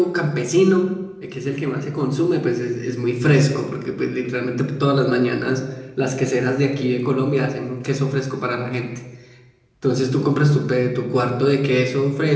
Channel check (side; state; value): both; identical; correlation 1.00